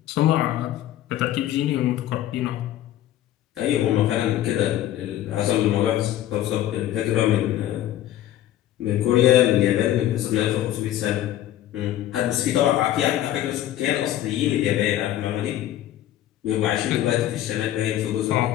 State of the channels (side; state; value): right; quieter; 12.9 dB